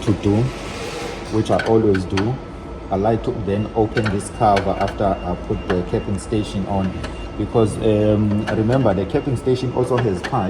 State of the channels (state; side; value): identical; both; correlation 1.00